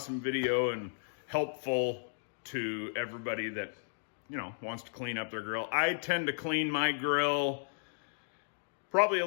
video and helpful to everybody that, wants to clean up their grill. I tend to clean my grill probably a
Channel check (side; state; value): right; silent; digital silence